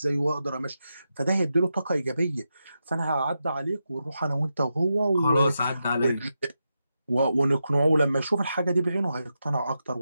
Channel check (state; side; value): inverted; both; correlation -0.88